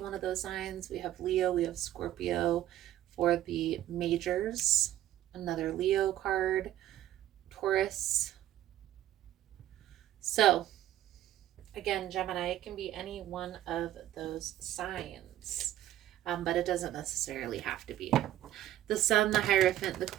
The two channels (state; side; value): quieter; left; 13.1 dB